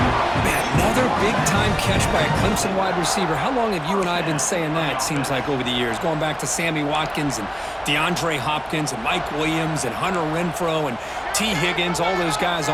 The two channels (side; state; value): both; identical; correlation 1.00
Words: Man, another big-time catch by a Clemson wide receiver. How long have you and I been saying that, seems like, over the years? Going back to Sammy Watkins and DeAndre Hopkins and Mike Williams and Hunter Renfrow and T. Higgins, all those guys